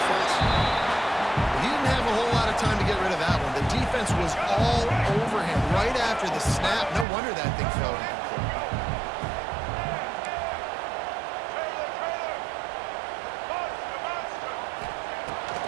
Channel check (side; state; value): left; drops out; at 7.1 s